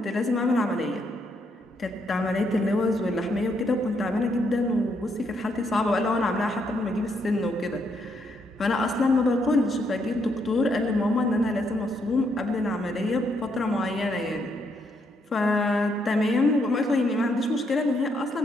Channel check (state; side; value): normal; both; correlation 0.75